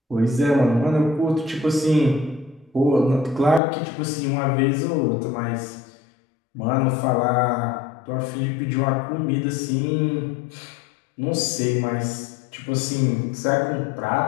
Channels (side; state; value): right; drops out; at 3.6 s